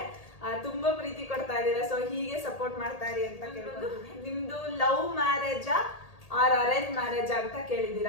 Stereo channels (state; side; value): late; right; 1.8 ms